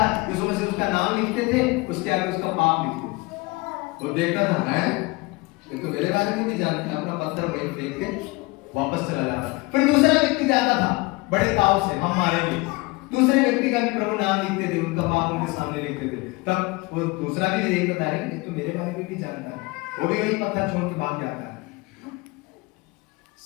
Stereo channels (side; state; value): right; quieter; 24.3 dB